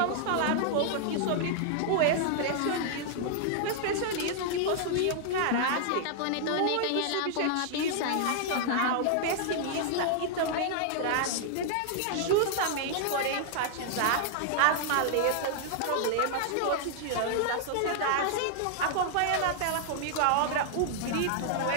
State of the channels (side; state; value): both; different; correlation -0.01